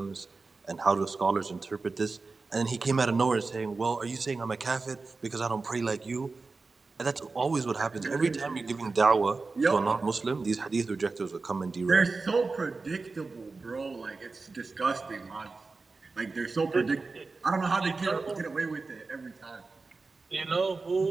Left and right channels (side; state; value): left; quieter; 3.9 dB